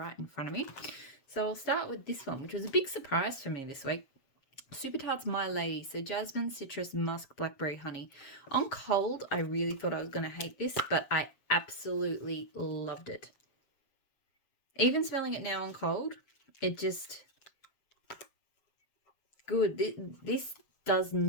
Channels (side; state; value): right; late; 7.4 ms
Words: in front of me. So I'll start with this one, which was a big surprise for me this week. Super Tarts My Lady. So Jasmine, citrus, musk, blackberry, honey. On cold, I really thought I was going to hate this, but I absolutely loved it. Even smelling it now on cold, it just... good. This does